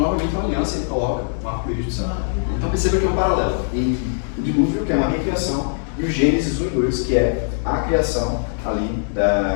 novamente uma aliança e ele coloca um arco-íris do céu. Então, perceba que é um paralelo entre o dilúvio, que é uma recriação, e o Gênesis 1 e 2, que é a criação ali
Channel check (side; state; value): right; silent; 65 dB below the other